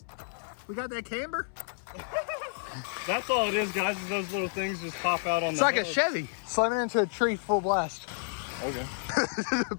We got that camber. That's all it is, guys. Is those little things just pop out on it's the like hub. a Chevy slamming into a tree full blast. Okay.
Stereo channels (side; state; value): right; silent; 58 dB below the other